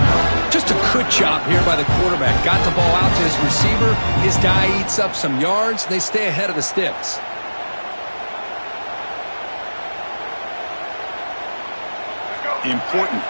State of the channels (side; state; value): both; inverted; correlation -1.00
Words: Just a good job here by the quarterback. Got the ball out to his receiver. His guy eats up some yards. They stay ahead of the sticks. Important